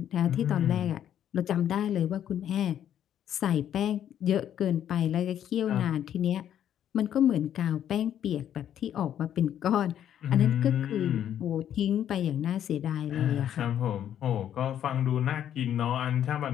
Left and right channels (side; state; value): right; quieter; 10.2 dB